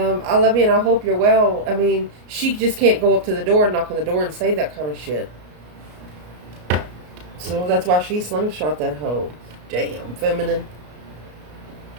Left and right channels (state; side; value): late; left; 33 ms